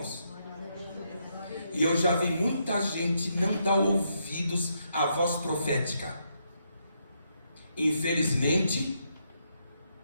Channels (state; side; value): inverted; both; correlation -0.78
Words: E eu já vi muita gente não dar ouvidos à voz profética. Infelizmente,